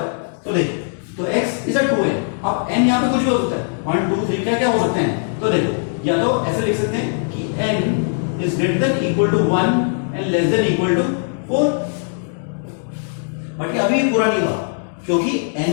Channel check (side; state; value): right; silent; digital silence